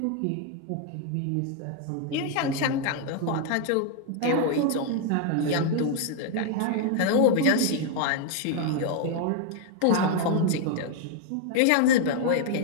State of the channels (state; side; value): different; both; correlation 0.00